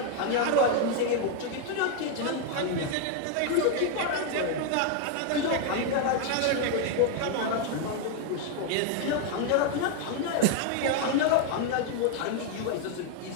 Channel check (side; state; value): both; different; correlation 0.01